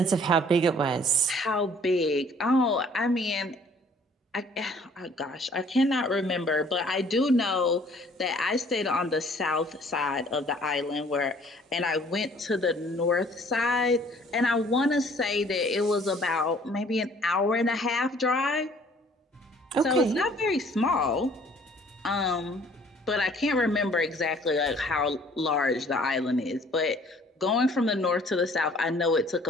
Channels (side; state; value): both; normal; correlation 0.56